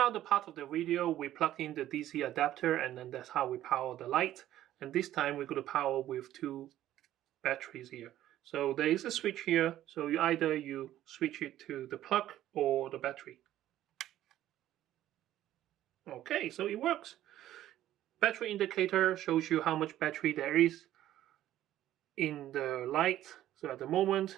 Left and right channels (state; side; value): quieter; left; 13.1 dB